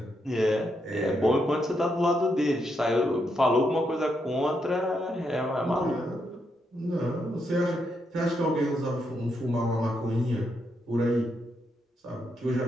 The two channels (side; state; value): both; normal; correlation 0.80